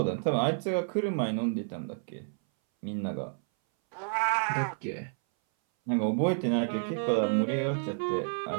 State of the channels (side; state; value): left; silent; 58 dB below the other